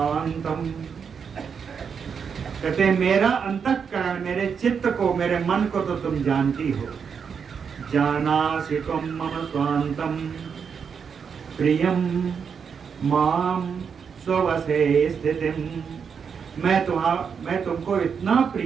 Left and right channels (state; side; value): quieter; left; 6.5 dB